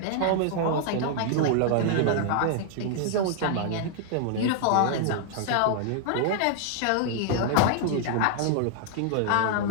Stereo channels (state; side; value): different; both; correlation -0.01